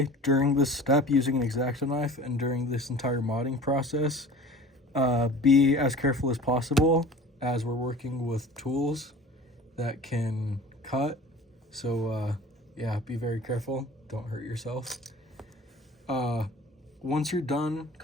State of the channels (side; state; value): both; normal; correlation 0.42